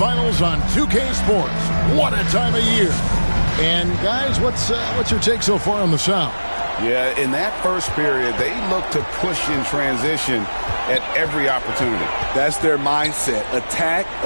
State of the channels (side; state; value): both; inverted; correlation -1.00